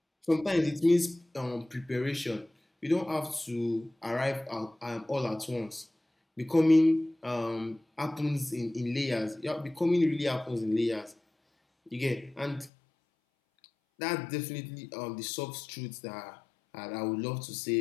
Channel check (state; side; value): drops out; right; at 12.7 s